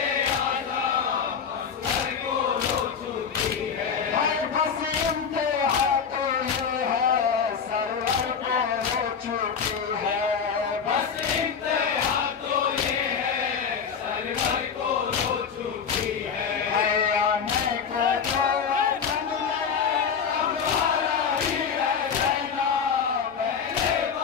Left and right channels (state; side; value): quieter; right; 6.7 dB